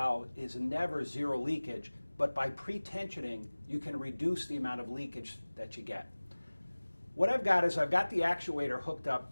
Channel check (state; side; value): inverted; both; correlation -1.00